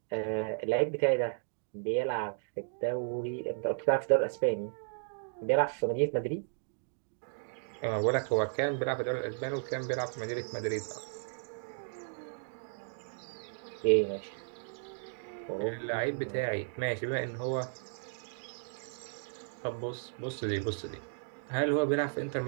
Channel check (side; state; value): left; silent; digital silence